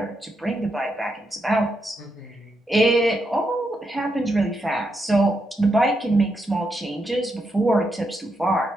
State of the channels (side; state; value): both; normal; correlation 0.82